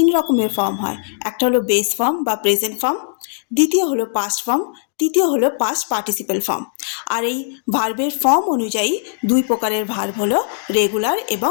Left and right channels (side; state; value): right; silent; digital silence